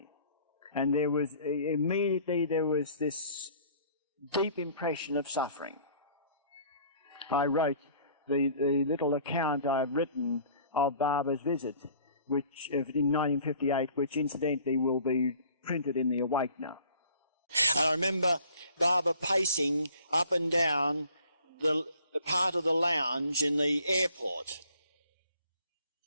And immediately there was this deep impression of suffering. I wrote the little account I've written of Baba's visit, which in 1958, which incidentally will be printed in the Awakener. And I remember Baba pacing up and down the part of the lounge in the airport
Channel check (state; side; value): inverted; both; correlation -0.53